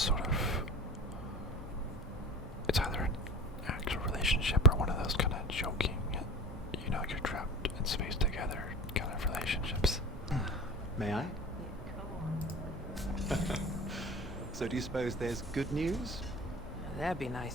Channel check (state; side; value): normal; both; correlation 0.35